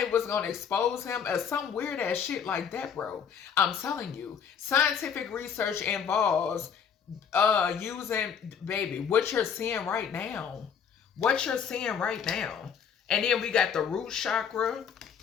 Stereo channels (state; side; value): quieter; right; 7.3 dB